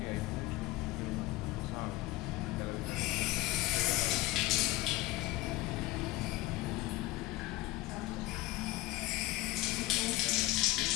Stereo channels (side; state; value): right; quieter; 18.6 dB